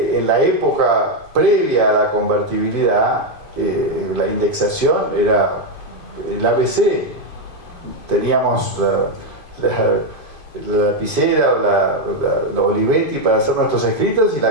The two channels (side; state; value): right; late; 2.5 ms